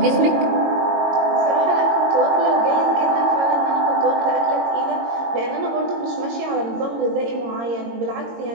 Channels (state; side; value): late; left; 22 ms